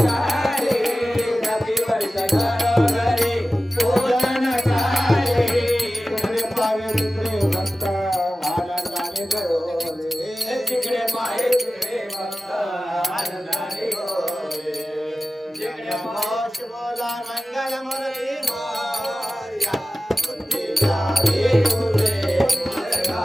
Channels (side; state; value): both; normal; correlation 0.95